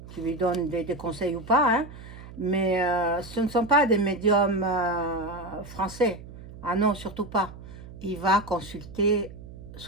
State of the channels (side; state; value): right; noise; hum, 15 dB below the sound